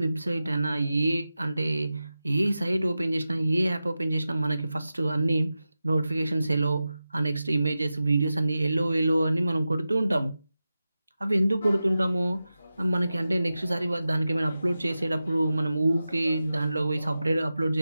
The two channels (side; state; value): both; inverted; correlation -0.93